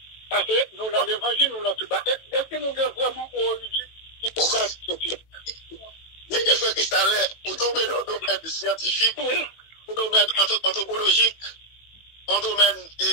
Parce côté, nous dans l'évangile, nous dans tout bas. Est-ce que nous avons vraiment origine qui pourrait être scientifique? Mais qu'est-ce que Cristallin, pour tomber dans le domaine scientifique, Oui. pour le domaine anthropologique, en domaine,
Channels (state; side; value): late; right; 18 ms